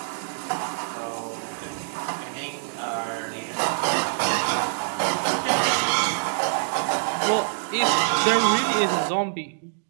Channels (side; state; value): left; silent; digital silence